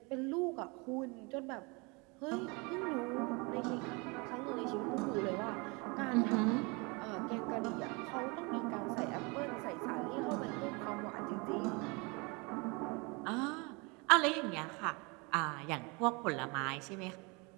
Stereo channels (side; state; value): left; quieter; 28.6 dB